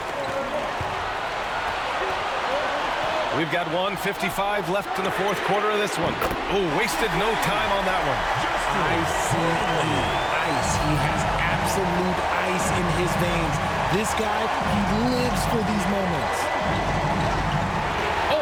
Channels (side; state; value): both; identical; correlation 1.00